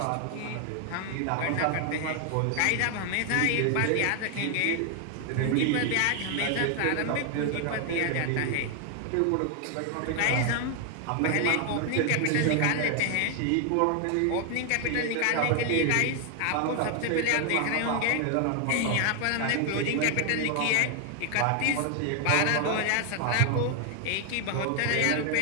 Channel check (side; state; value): both; different; correlation 0.00